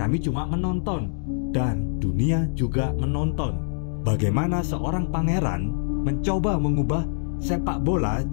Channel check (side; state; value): right; silent; digital silence